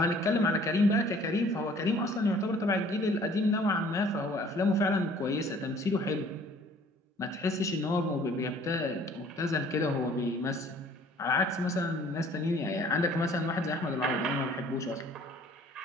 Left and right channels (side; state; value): both; normal; correlation 0.54